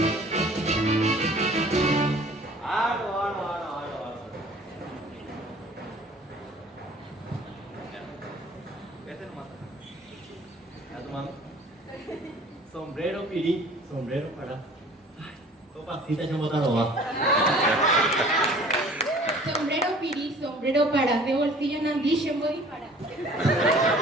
Sombrero pirí, sombrero para. Ay, topacita ya botaron va. Sombrero pirí, sombrero para, de bolsillo nandille voy para.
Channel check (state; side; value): normal; both; correlation 0.50